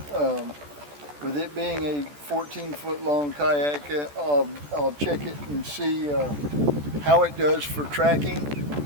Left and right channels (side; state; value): left; late; 14 ms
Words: With it being a 14-foot long kayak, I'll check it and see how it does for tracking,